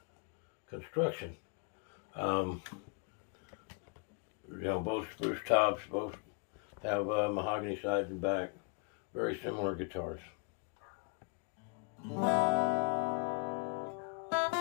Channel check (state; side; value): quieter; right; 37.4 dB